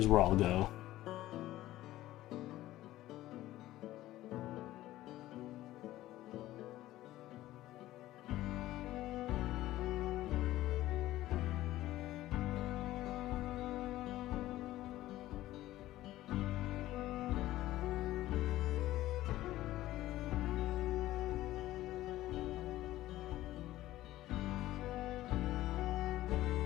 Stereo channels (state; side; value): quieter; right; 15.4 dB